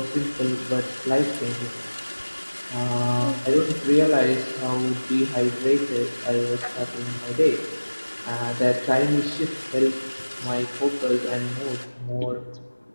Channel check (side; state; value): both; inverted; correlation -1.00